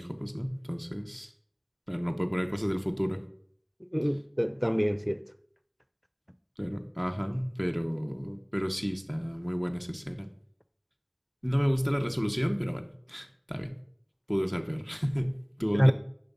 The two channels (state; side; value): identical; both; correlation 1.00